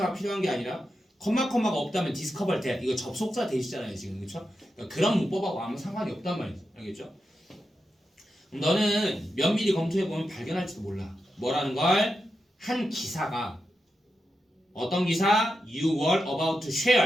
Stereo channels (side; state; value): both; normal; correlation 0.88